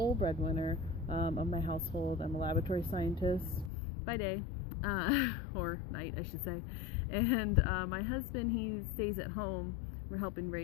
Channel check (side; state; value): right; drops out; at 3.7 s